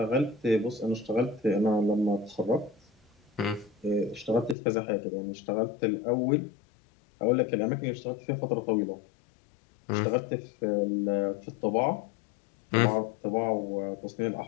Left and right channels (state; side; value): drops out; right; at 4.5 s